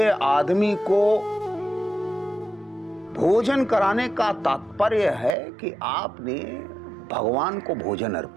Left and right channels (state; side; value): drops out; left; at 5.4 s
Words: आदमी को भोजन कराने का तात्पर्य है कि आपने भगवान को भोजन